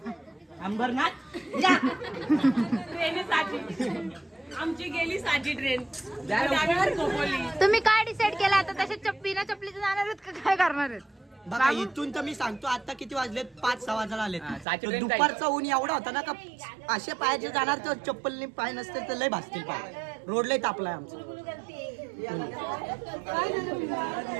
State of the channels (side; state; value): left; drops out; at 14.7 s